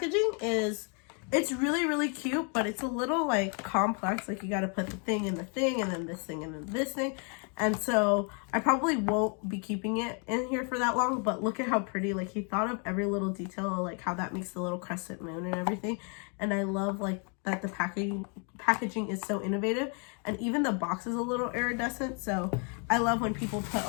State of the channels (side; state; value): right; quieter; 38.0 dB